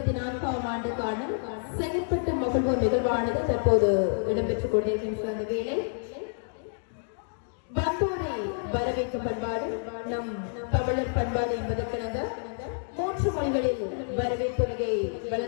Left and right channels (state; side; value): silent; right; digital silence